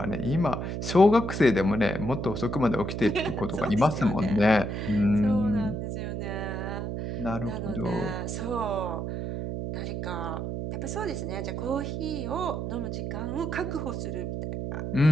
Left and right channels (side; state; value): right; noise; hum, 4 dB below the sound